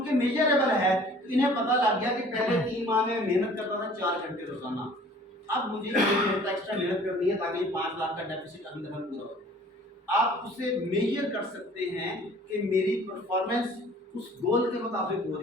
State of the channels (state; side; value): normal; both; correlation 0.51